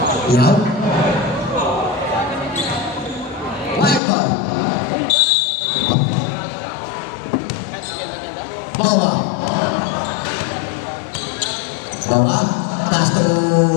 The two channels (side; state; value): right; drops out; at 4.0 s